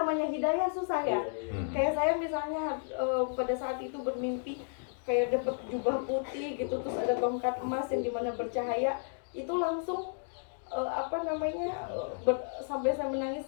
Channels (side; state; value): right; silent; digital silence